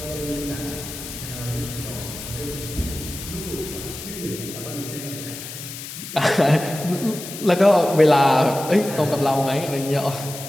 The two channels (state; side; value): noise; left; hiss, 10 dB below the sound